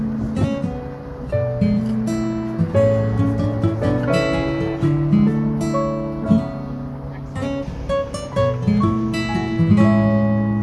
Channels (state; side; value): identical; both; correlation 1.00